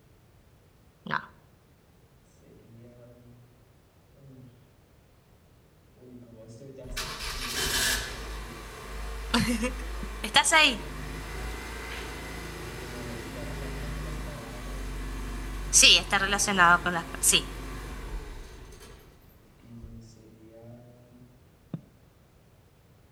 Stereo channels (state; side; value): identical; both; correlation 1.00